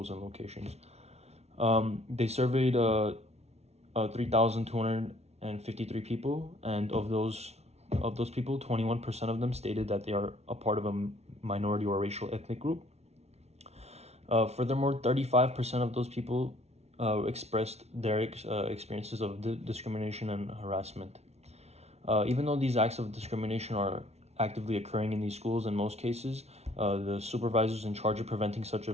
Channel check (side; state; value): left; late; 0.31 ms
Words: and locations. They surveyed 3,253 people, and of those people, 21% of them stated that they are a part of a minority or racial ethnic group. Furthermore, 35% of those people expressed their experiences of discrimination and harassment. Even though these acts of discrimination are actively occurring in these schools, in most cases, the supervisors in charge of preventing such